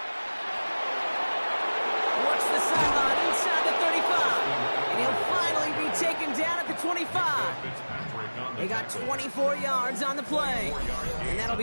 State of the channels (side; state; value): both; inverted; correlation -1.00